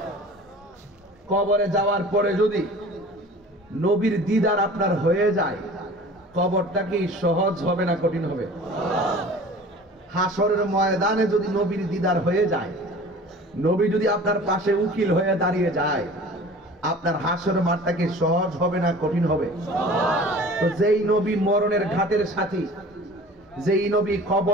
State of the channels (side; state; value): both; normal; correlation 0.43